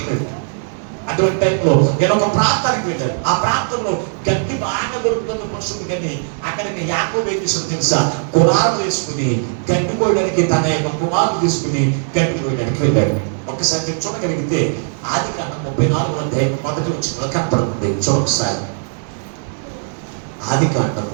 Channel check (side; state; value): left; silent; 65 dB below the other